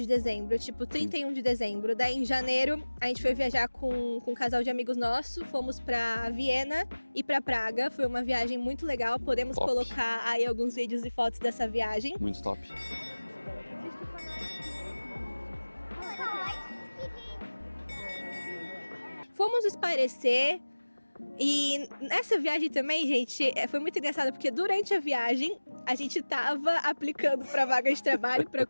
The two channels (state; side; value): inverted; both; correlation -1.00